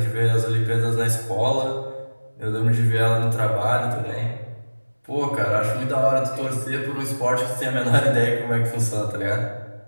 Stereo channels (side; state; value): both; inverted; correlation -1.00